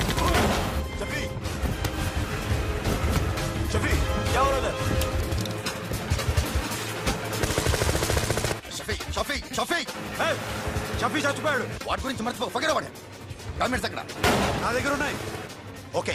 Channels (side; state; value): both; identical; correlation 1.00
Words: शफी शफी क्या हो रहा है షఫీ షఫీ షఫీ షఫీ చచ్చిపోయాడు. వాటి గురించి మర్చిపో పకడా పడే డాక్యుమెంట్స్ అక్కడ నా దగ్గర ఉన్నాయి. ఓకే